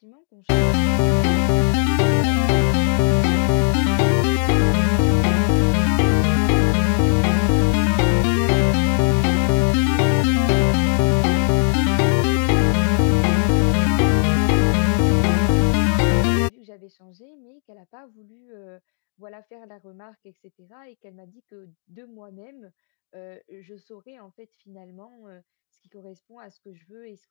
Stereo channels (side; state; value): right; silent; digital silence